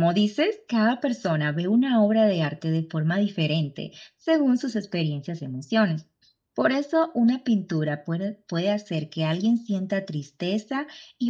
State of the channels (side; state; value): both; identical; correlation 1.00